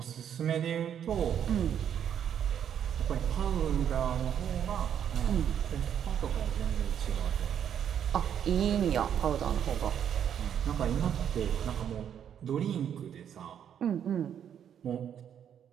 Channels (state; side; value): quieter; left; 9.0 dB